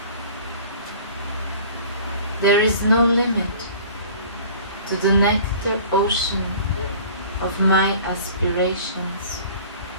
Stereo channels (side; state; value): both; inverted; correlation -0.46